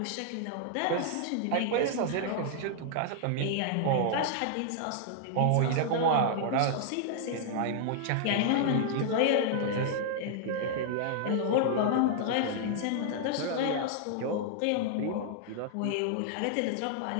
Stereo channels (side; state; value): both; different; correlation -0.01